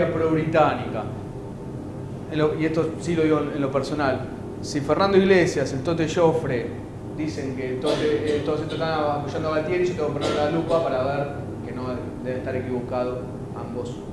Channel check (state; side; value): identical; both; correlation 1.00